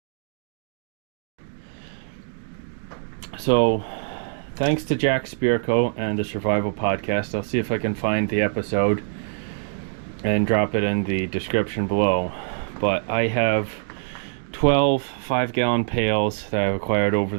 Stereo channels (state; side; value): silent; left; 62 dB below the other